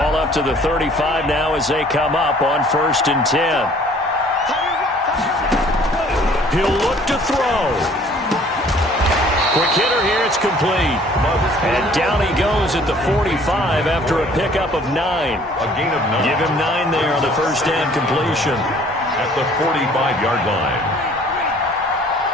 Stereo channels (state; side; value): normal; both; correlation 0.55